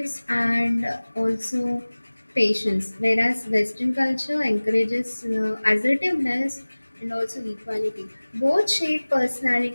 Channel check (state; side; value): inverted; both; correlation -1.00